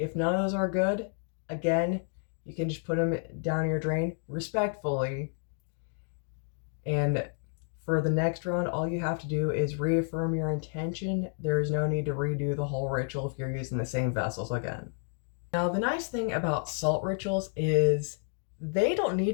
none of those are good, again, you can just put them down your drain respectfully. And for the next round, all you have to do is reaffirm your intention. There is no need to redo the whole ritual if you're using the same vessels again. Now, the nice thing about salt rituals is they don't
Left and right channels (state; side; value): silent; right; 58 dB below the other